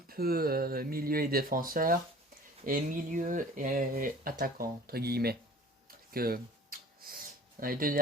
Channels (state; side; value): normal; both; correlation 0.46